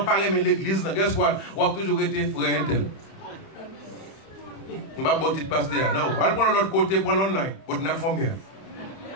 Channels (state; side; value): late; right; 31 ms